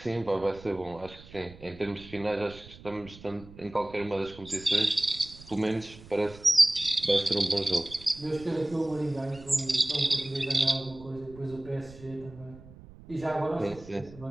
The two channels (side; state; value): right; noise; rumble, 19 dB below the sound